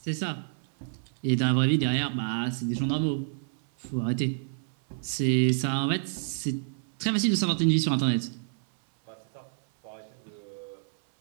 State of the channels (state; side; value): silent; left; 59 dB below the other